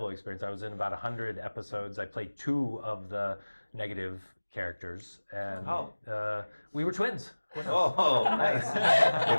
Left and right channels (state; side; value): inverted; both; correlation -1.00